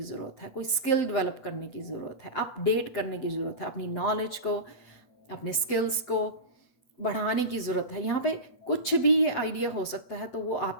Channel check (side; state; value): right; late; 7.8 ms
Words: ज़रूरत है, कोई स्किल डेवलप करने की ज़रूरत है, अपडेट करने की ज़रूरत है, अपनी नॉलेज को, अपने स्किल्स को बढ़ाने की ज़रूरत है। यहाँ पे कुछ भी ये आइडिया हो सकता है, तो वो